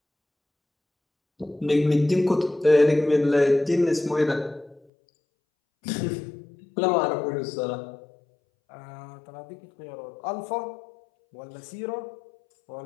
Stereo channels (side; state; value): right; drops out; at 4.8 s